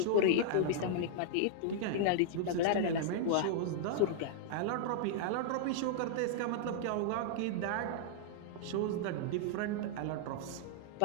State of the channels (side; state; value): both; different; correlation -0.01